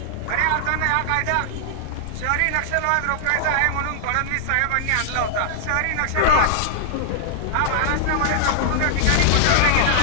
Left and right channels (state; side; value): different; both; correlation -0.01